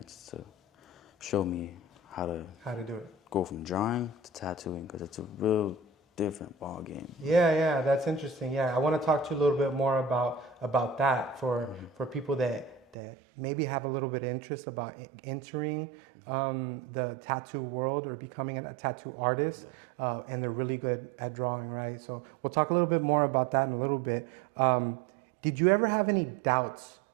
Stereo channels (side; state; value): left; drops out; at 13.0 s